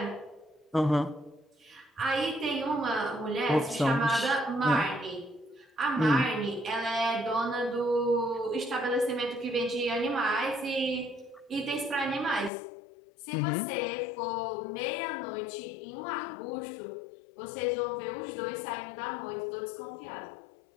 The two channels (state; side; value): drops out; right; at 12.5 s